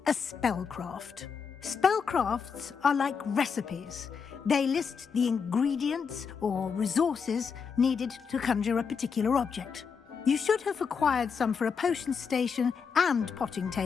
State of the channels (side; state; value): right; quieter; 6.1 dB